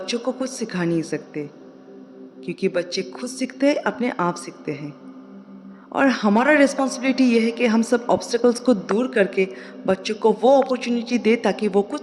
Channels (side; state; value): both; identical; correlation 1.00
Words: को कुछ सिखा नहीं सकते, क्योंकि बच्चे खुद सीखते हैं, अपने आप सीखते हैं। और हमारा रिस्पॉन्सिबिलिटी ये है कि हम सब ऑब्स्टेकल्स को दूर करके बच्चों को वो अपॉर्चुनिटी दे ताकि वो